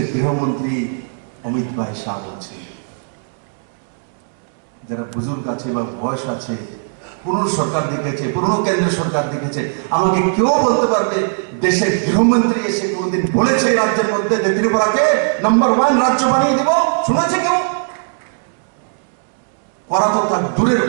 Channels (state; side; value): silent; left; digital silence